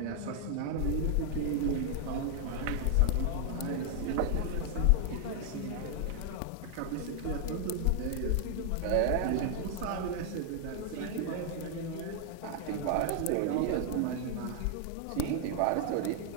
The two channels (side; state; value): both; different; correlation 0.00